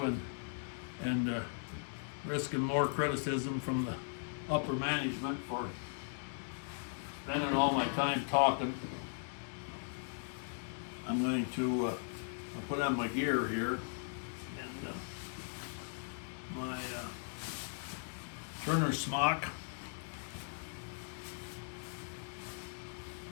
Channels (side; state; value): right; silent; digital silence